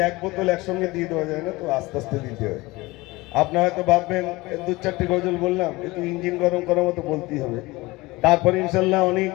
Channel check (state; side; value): quieter; right; 21.5 dB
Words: এক বোতল একসঙ্গে দিয়ে দেওয়া যায় না, তো আস্তে আস্তে দিতে হয়। আপনারা হয়তো ভাববেন 2-4টি গজল বললাম, একটু ইঞ্জিন গরম করার মতো বলতেই হবে। তারপরে ইনশাল্লাহ অনেক